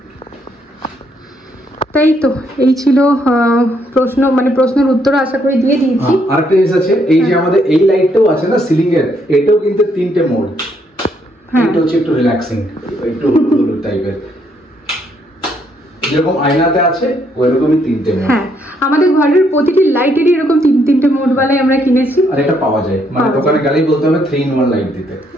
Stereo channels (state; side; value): normal; both; correlation 0.72